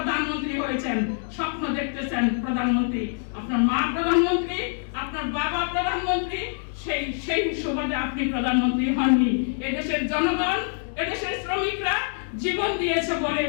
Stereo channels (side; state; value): right; silent; 62 dB below the other